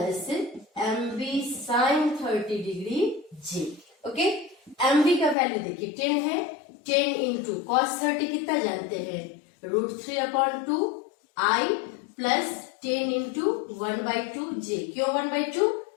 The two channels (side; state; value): right; drops out; at 5.4 s